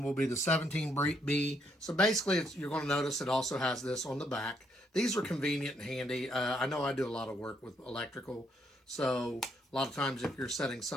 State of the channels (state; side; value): normal; both; correlation 0.73